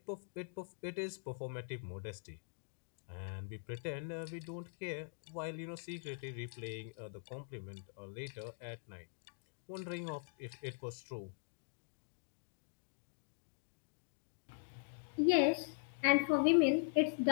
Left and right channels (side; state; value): right; silent; digital silence